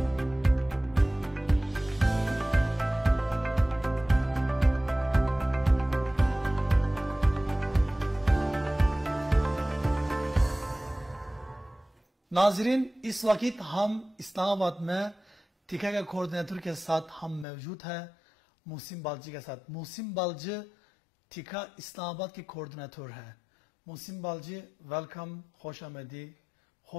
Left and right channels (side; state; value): right; drops out; at 17.4 s